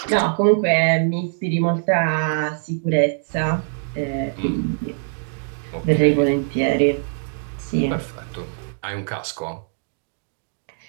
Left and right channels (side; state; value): left; silent; digital silence